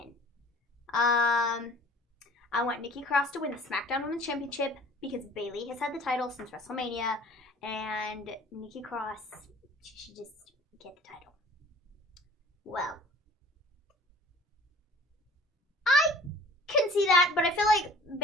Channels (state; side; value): normal; both; correlation 0.48